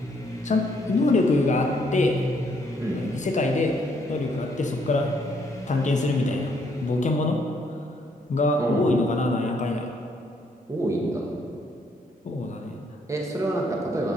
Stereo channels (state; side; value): normal; both; correlation 0.70